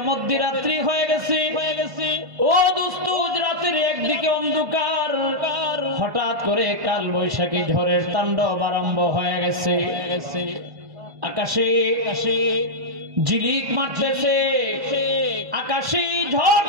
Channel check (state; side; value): late; left; 1.5 ms